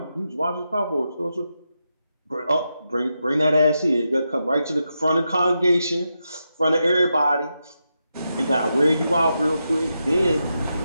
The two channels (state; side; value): inverted; both; correlation -0.86